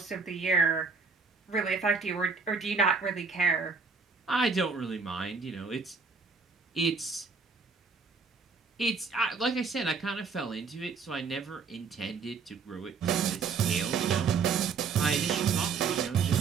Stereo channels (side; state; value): left; quieter; 5.0 dB